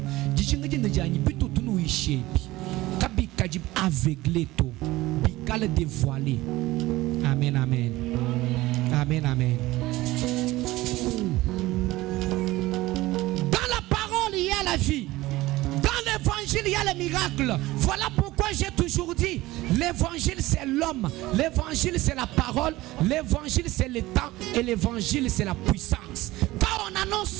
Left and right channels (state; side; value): quieter; left; 18.3 dB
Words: dichinga jinde jani bitu tunu ishepi kabi kajib aveuglé to bikale dévoilé. Amen, amen. Amen, amen. Dans la parole il y a la vie. Dans l'évangile il y a le miracle. Voilà pourquoi j'ai toujours dit l'évangile c'est l'homme, l'évangile c'est la parole, l'évangile c'est le temps et l'évangile c'est la puissance. Quand on